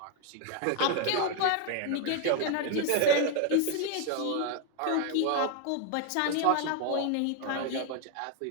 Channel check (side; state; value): both; different; correlation 0.01